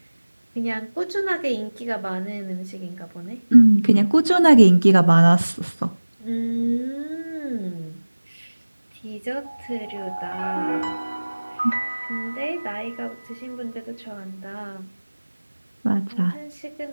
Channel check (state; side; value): inverted; both; correlation -1.00